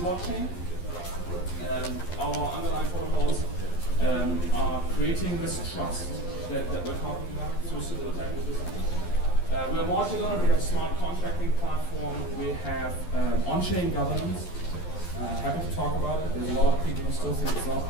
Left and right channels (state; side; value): late; right; 11 ms